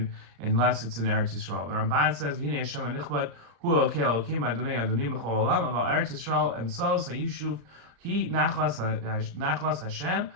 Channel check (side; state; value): left; late; 35 ms